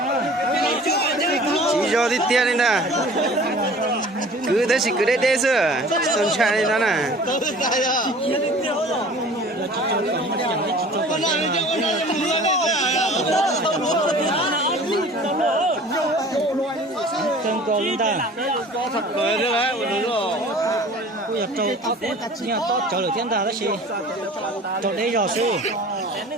Chỉ cho đi tiền đi nè. Cứ thế cứ đây sư. Sơn trai đi nè. Chân cầu lên ta. Thật cười thế đấy, đúng rồi. Bây giờ trâu nhà to trâu được thiên ta đó chị. Trâu đây rồi sư.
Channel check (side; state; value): both; normal; correlation 0.45